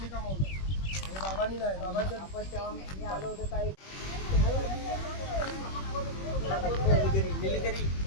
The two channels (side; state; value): right; late; 21 ms